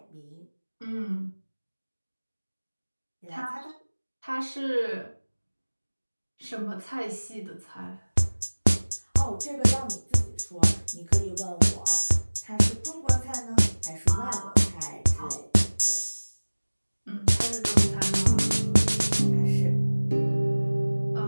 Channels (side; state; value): both; inverted; correlation -1.00